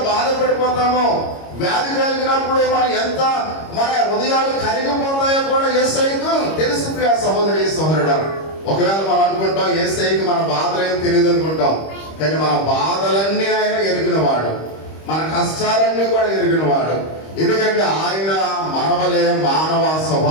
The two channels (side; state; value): right; late; 25 ms